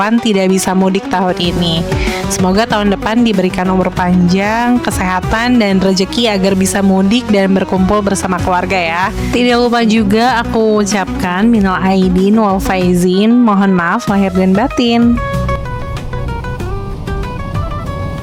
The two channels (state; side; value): identical; both; correlation 1.00